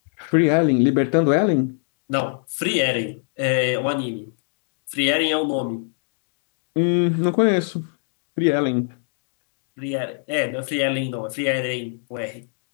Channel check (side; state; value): right; silent; digital silence